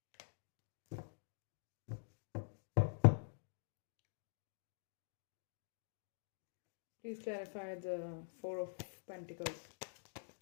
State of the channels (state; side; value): silent; right; digital silence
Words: Please clarify the Four of Pentacles.